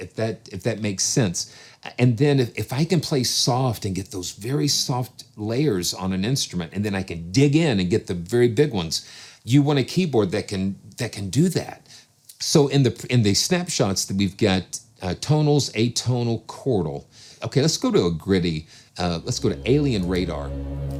that makes sense. And then if I can play soft and get those very soft layers on an instrument, and then I can dig in and get the very big ones, you want a keyboard that can do that. So in the snapshots that we've got tonals, atonal, chordal. Okay, let's go to a gritty. Let's go to Alien Radar.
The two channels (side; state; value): both; identical; correlation 1.00